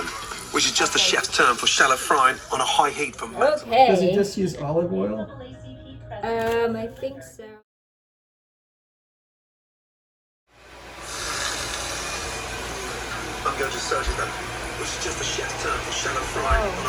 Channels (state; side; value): identical; both; correlation 1.00